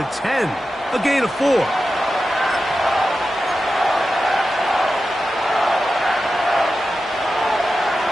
10. A gain of 4.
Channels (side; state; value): both; normal; correlation 0.92